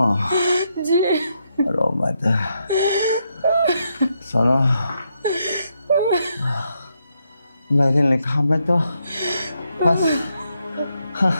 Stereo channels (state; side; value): inverted; both; correlation -0.80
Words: जी रो मत सोनो। मेरे लिखा में तो बस